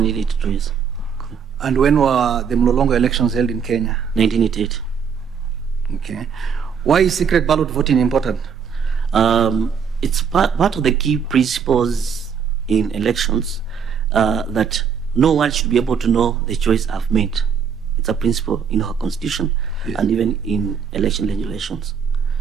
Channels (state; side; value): quieter; left; 6.8 dB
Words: yes. And when were the Mlolongo elections held in Kenya? 1988. Okay. Why is secret ballot voting important? It's part of the key principles in elections that no one should be able to know the choice I've made. It's a principle in our constitution, yes, and even in election regulations.